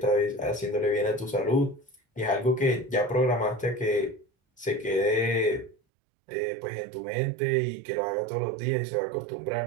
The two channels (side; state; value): left; drops out; at 5.8 s